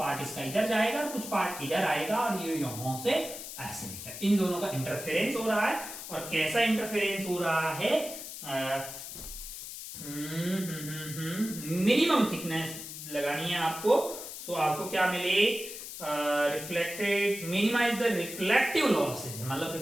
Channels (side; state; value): left; noise; hiss, 10 dB below the sound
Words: इसका इधर जाएगा और कुछ पार्ट इधर आएगा, और ये यहां से ऐसे निकल, इन दोनों का इंटरफेरेंस हो रहा है। और कैसा इंटरफेरेंस हो रहा है, मिनिमम थिकनेस लगानी है आपको। सो आपको क्या मिले, reflected, minimise the reflective losses, मतलब